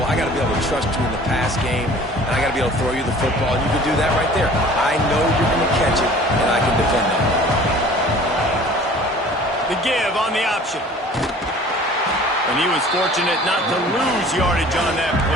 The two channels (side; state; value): both; normal; correlation 0.47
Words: I got to be able to trust you in the pass game, and I got to be able to throw you the football. And you can do that right there. I know you're going to catch it, and I can defend it. The give on the option. And he was fortunate not to lose yardage on that